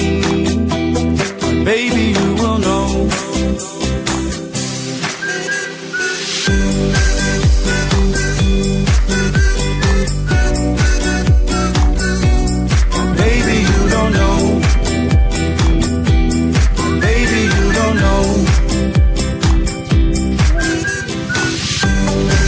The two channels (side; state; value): both; identical; correlation 1.00